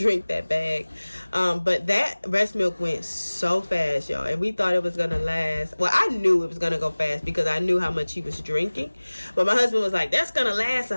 that bag. But that breast milk went so fast, y'all, and we thought it was gonna last. Well, I knew it was gonna go fast because I knew how much he was drinking, but my husband was like, that's gonna last a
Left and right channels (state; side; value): inverted; both; correlation -1.00